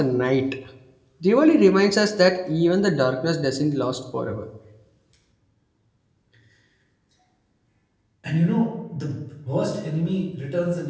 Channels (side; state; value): both; identical; correlation 1.00